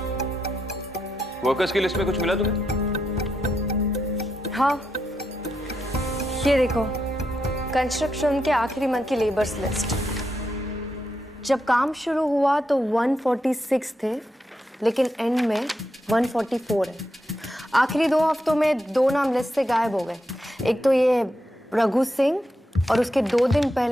वर्कर्स की लिस्ट में कुछ मिला तुम्हें? हाँ, ये देखो, कंस्ट्रक्शन के आखिरी मंथ की लेबर्स लिस्ट। जब काम शुरू हुआ तो 146 थे, लेकिन एंड में 144 है। आखिरी 2 हफ्तों में 2 नाम लिस्ट से गायब हो गए। एक तो ये रघु सिंह और उसके 2 दिन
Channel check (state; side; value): normal; both; correlation 0.84